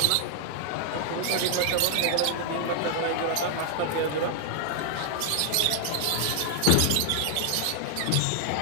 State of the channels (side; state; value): both; different; correlation 0.00